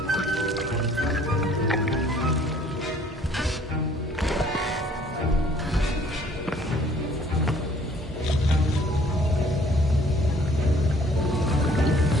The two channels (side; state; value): both; normal; correlation 0.57